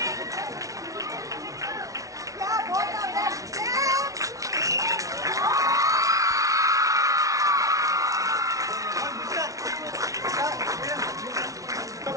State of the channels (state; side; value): late; left; 0.17 ms